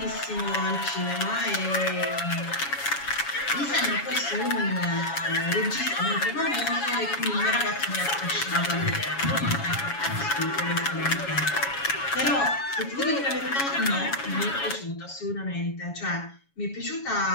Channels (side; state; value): right; late; 7.2 ms